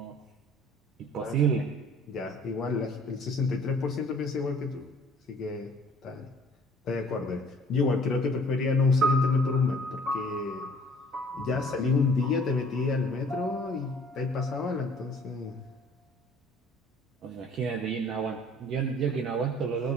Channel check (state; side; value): normal; both; correlation 0.54